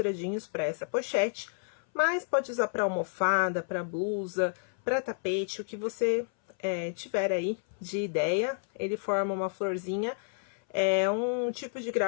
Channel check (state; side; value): silent; right; 57 dB below the other